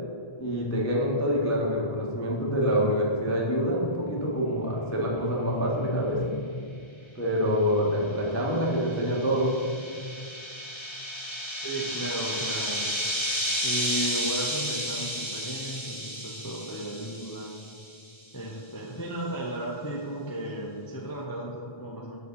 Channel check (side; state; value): right; late; 1.3 ms